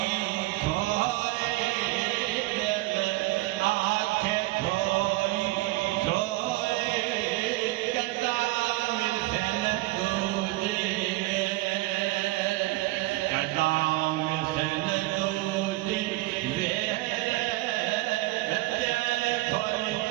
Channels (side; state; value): left; quieter; 20.3 dB